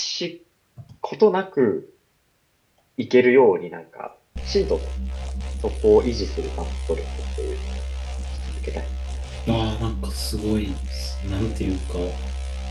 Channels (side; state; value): both; identical; correlation 1.00